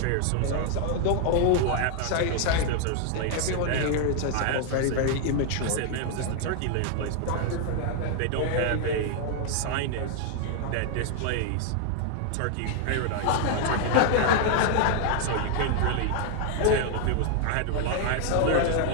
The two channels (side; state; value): both; different; correlation 0.00